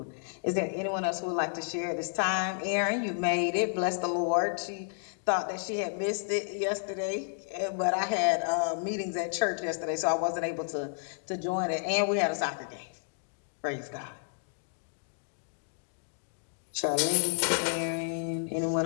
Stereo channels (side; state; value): right; silent; digital silence